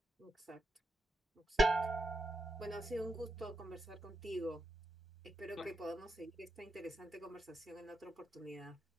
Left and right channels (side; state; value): both; normal; correlation 0.85